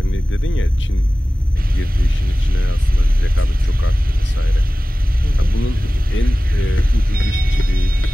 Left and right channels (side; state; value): both; normal; correlation 0.97